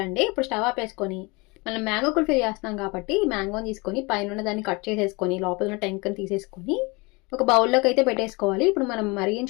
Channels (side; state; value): right; quieter; 26.8 dB